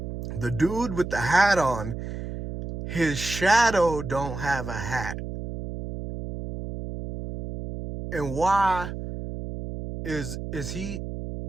The dude with the hat on, his shadow don't have a hat. And why is he,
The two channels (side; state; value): right; noise; hum, 7 dB below the sound